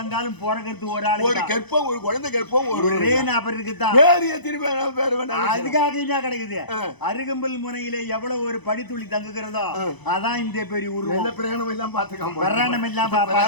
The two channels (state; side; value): late; right; 1.0 ms